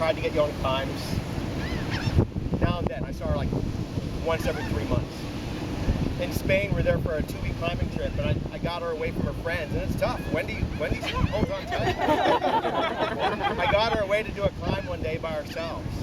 to get you on climbs. Now and then, I saw her like once every 3 months. In Spain, we're there for a 2-week climbing trip, and I got her away from her friends, and it's tough. Wendy holds on tight. I got her away to do a climb one day by ourselves.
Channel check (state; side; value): identical; both; correlation 1.00